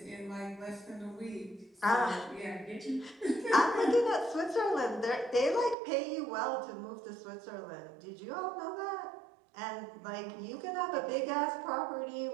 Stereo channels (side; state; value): left; drops out; at 5.8 s